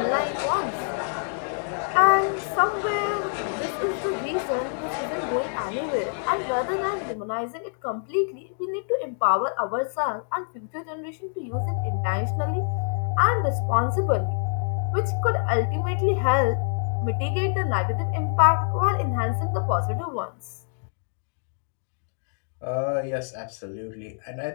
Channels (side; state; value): right; silent; 61 dB below the other